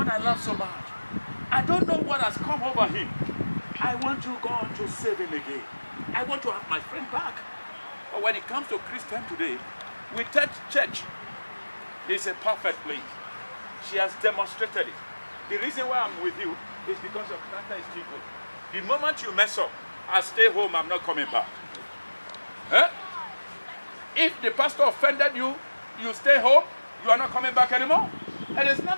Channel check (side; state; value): both; inverted; correlation -1.00